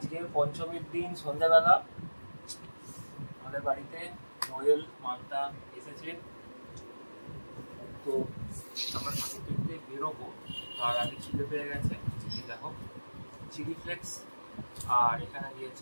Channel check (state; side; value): inverted; both; correlation -1.00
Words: পঞ্চমীর দিন সন্ধ্যাবেলা আমাদের বাড়িতে নোয়েল মান্তা এসেছে। তো আমরা ঠাকুর দেখতে বেরোবো, তার আগে খিদে পেয়ে গেছে। দেখো চিলি ফ্লেক্স, আর এখানে